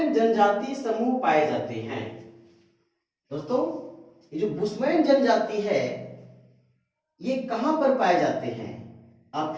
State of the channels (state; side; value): identical; both; correlation 1.00